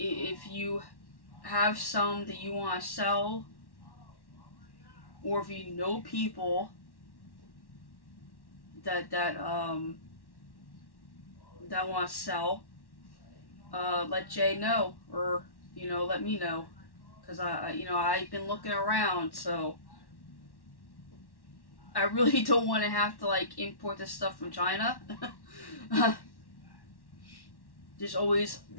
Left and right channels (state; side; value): late; right; 1.1 ms